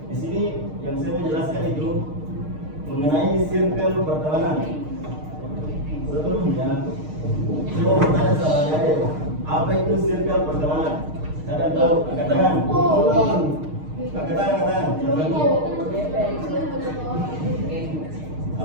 di sini yang saya mau jelaskan itu mengenai circle pertemanan. Sebelumnya, saya mau bertanya sama Ade, apa itu circle pertemanan? Kalian tahu? Angkat tangan. Angkat tangan.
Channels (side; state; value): left; late; 6.5 ms